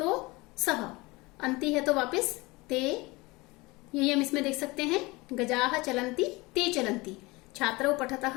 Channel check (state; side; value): quieter; right; 23.3 dB